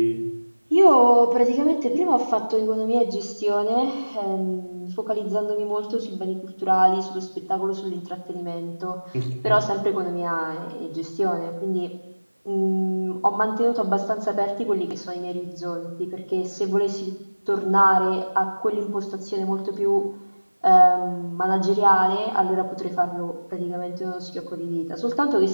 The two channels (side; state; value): both; inverted; correlation -1.00